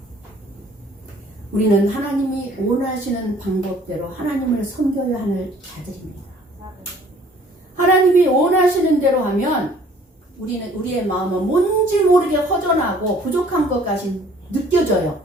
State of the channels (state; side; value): normal; both; correlation 0.55